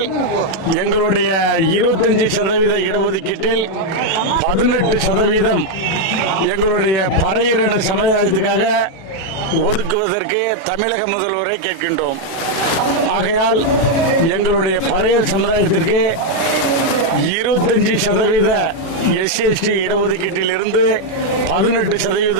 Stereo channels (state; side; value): late; right; 37 ms